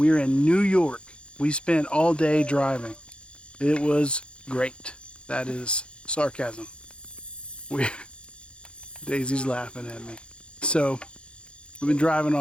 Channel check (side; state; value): right; late; 0.056 ms